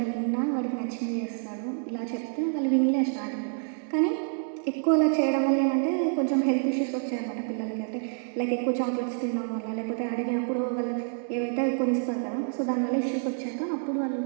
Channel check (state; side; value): silent; left; 59 dB below the other